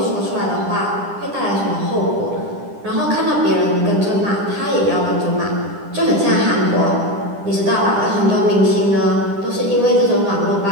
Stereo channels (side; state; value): left; late; 10 ms